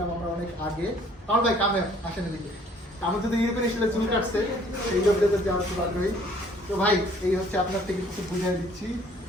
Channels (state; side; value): normal; both; correlation 0.58